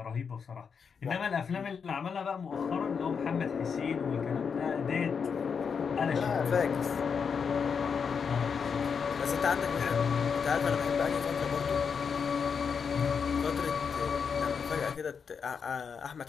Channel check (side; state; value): right; quieter; 6.2 dB